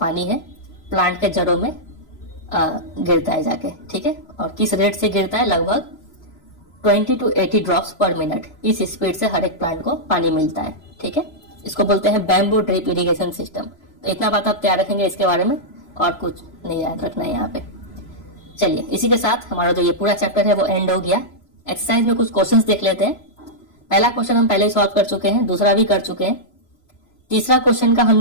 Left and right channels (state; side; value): late; right; 3.0 ms